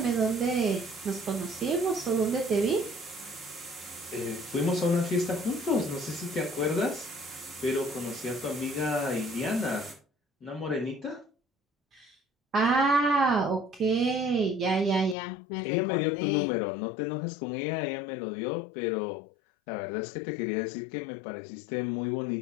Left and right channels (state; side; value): drops out; right; at 15.2 s